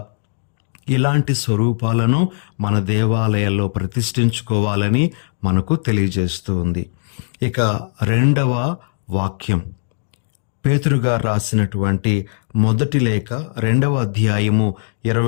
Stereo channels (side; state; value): right; silent; digital silence